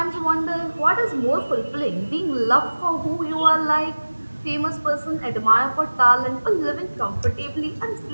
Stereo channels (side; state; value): both; inverted; correlation -1.00